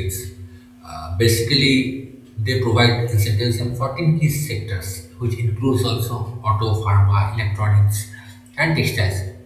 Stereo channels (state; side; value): identical; both; correlation 1.00